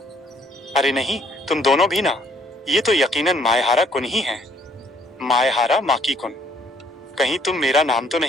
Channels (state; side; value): normal; both; correlation 0.64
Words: अरे नहीं, तुम दोनों भी ना। ये तो यकीनन मायहारा कुन ही है। मायहारा माकी कुन, कहीं तुम मेरा नाम तो